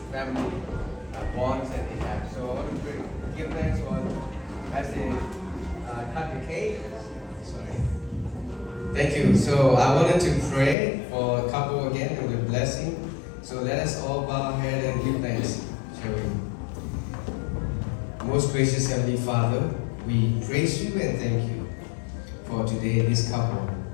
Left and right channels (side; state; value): right; drops out; at 10.8 s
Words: family bonds that they have. So I want to give thanks for as they cut the cake. Sorry. Thank you. So I wanted to pray for a couple again with a blessing. So let us all bow our head and give thanks, shall we? Most gracious Heavenly Father, we praise you and thank you for today, this couple,